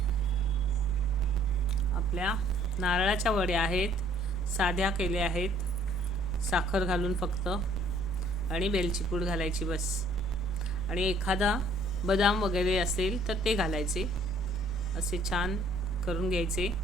आपल्या नारळाच्या वड्या आहेत, साध्या केल्या आहेत, साखर घालून फक्त, आणि वेलची पूड घालायची बस. आणि एखादा बदाम वगैरे असेल तर ते घालायचे. असे छान करून घ्यायचे.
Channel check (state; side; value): normal; both; correlation 0.59